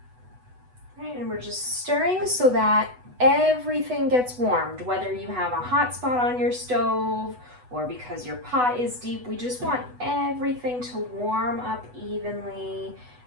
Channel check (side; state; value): left; late; 8.1 ms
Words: we're just stirring so that everything gets warmed, whether you have a hot spot on your stove or because your pot is deep. We just want everything to warm up evenly